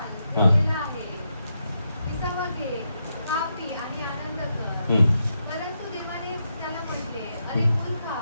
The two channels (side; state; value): both; inverted; correlation -0.83